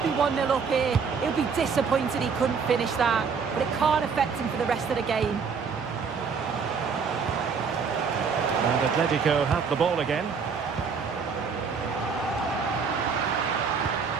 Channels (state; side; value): quieter; left; 5.7 dB